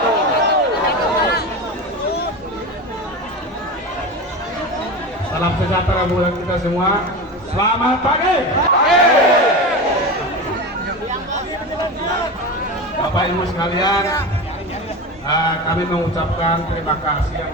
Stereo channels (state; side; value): normal; both; correlation 0.25